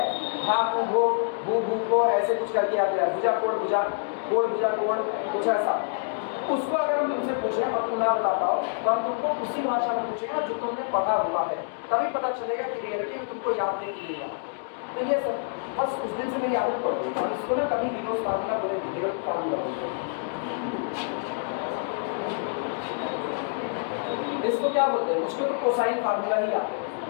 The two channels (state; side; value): silent; right; digital silence